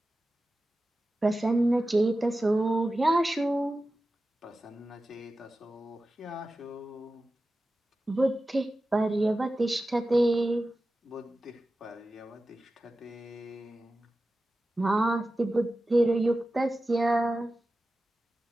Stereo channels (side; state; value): both; normal; correlation 0.94